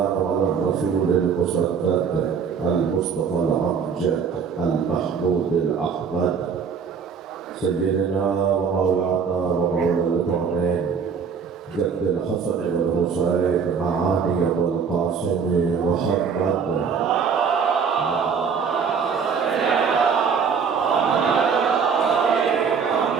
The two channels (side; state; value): left; quieter; 6.2 dB